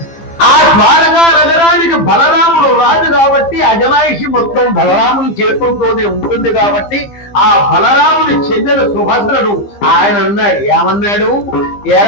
ఆ ద్వారకా నగరానికి బలరాముడు రాజు కాబట్టి అజమాయిషి మొత్తం బలరాముని చేతులతోనే ఉంటుంది కాబట్టి ఆ బలరాముని చెల్లెలు సుభద్రను ఆయన అన్నాడు. ఏమన్నాడు?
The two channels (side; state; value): right; late; 15 ms